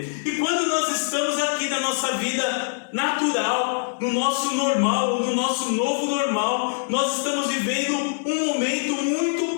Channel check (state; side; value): silent; right; 60 dB below the other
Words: E quando nós estamos aqui na nossa vida natural, no nosso normal, ou no nosso novo normal, nós estamos vivendo um momento